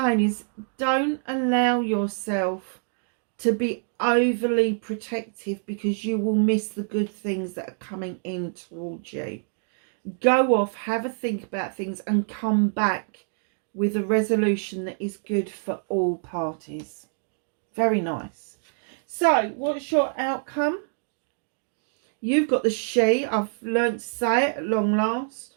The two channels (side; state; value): left; silent; 58 dB below the other